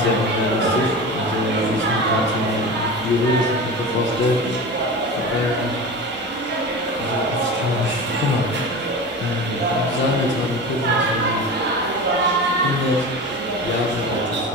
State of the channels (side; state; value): both; normal; correlation 0.30